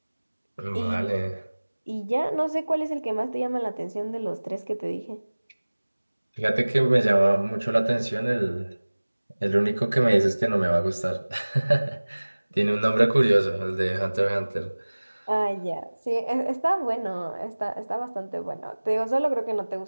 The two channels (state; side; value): inverted; both; correlation -1.00